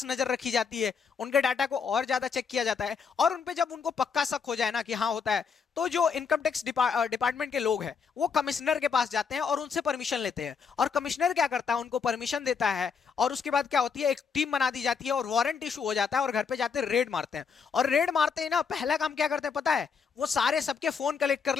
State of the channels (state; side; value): quieter; right; 6.0 dB